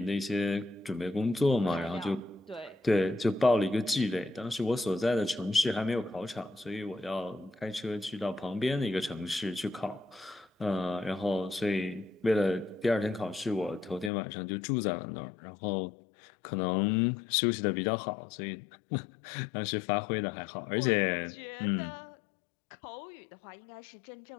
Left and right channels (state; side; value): drops out; right; at 14.1 s